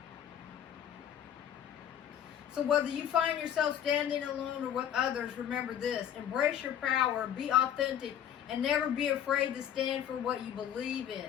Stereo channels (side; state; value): right; quieter; 9.8 dB